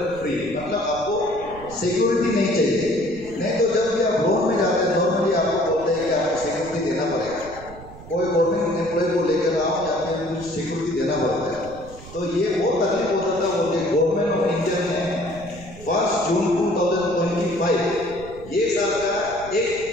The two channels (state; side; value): noise; right; rumble, 17 dB below the sound